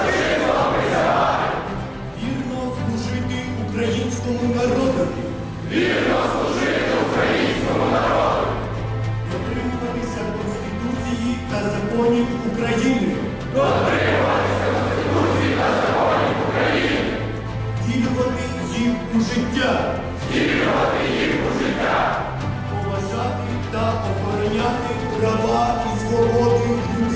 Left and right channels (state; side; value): identical; both; correlation 1.00